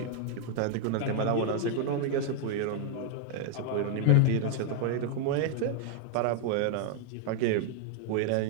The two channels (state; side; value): different; both; correlation 0.00